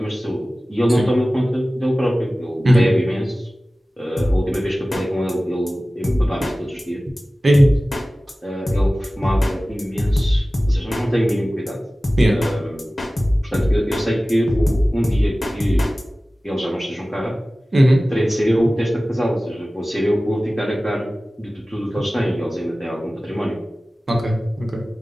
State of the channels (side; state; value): both; normal; correlation 0.97